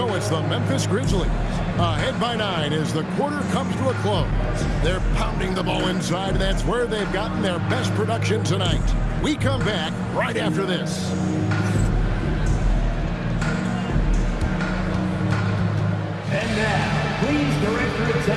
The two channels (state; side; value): identical; both; correlation 1.00